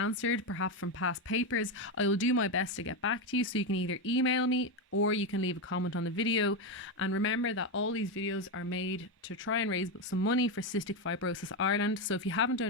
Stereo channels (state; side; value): normal; both; correlation 0.10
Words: perhaps from past papers, I will do my best to get back to you. So you can either email me or you can leave a comment on the video. And remember that all these videos are made to try and raise some money for Cystic Fibrosis Ireland. So if you haven't